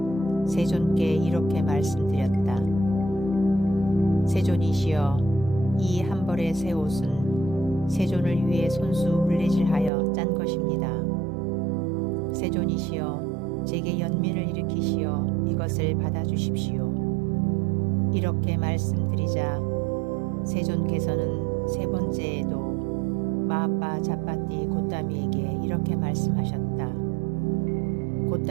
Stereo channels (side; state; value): left; drops out; at 9.9 s